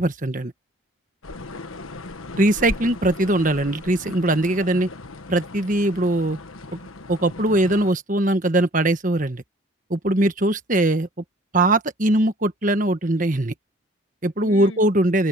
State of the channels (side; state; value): both; normal; correlation 0.55